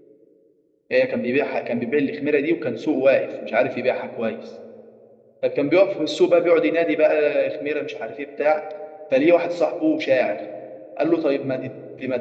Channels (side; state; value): both; identical; correlation 1.00